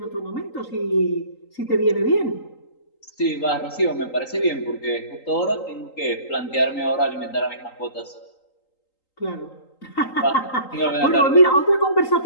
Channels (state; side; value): late; right; 3.8 ms